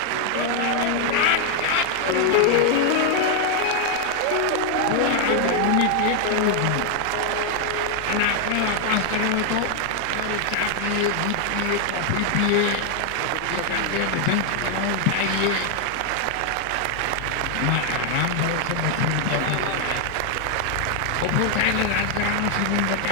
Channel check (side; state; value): both; different; correlation 0.00